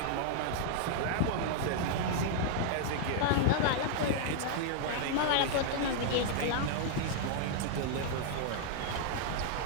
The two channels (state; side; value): different; both; correlation -0.01